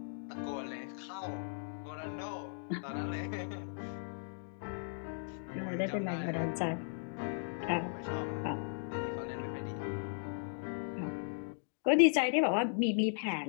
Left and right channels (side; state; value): right; silent; digital silence